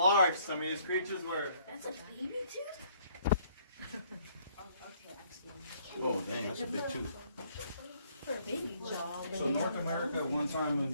some of these creatures were. That's a baby tooth? Oh, dang, that's a big tooth. For a baby jaw. So North America at one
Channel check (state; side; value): inverted; both; correlation -0.64